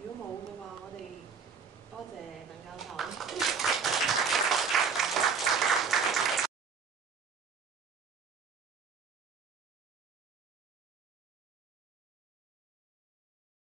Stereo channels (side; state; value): left; quieter; 5.8 dB